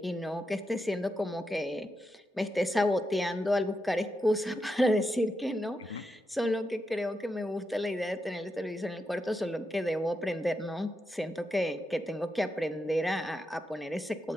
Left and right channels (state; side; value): normal; both; correlation 0.86